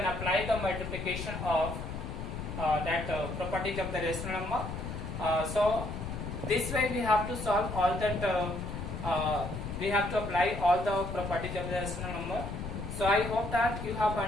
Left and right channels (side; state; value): left; noise; rumble, 6 dB below the sound